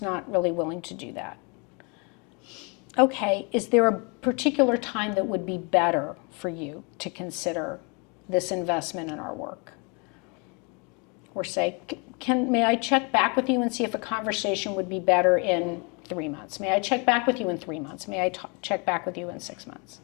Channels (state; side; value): quieter; right; 32.6 dB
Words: not really willing to do that. Okay, is there a particular time that would be better for you to consider this investment in our work? Or say, may I check back with you and see if a conversation would be better in 3 months? May I check back with you in 3 months? May I check back with you in 6 months?